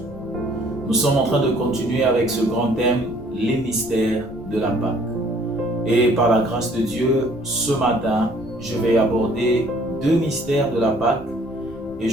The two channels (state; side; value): noise; left; rumble, 20 dB below the sound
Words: Nous sommes en train de continuer avec ce grand thème, les mystères de la Pâque. Et par la grâce de Dieu, ce matin, je vais aborder 2 mystères de la Pâque. Et